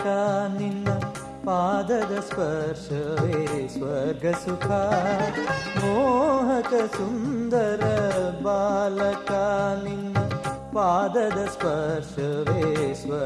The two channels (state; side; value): identical; both; correlation 1.00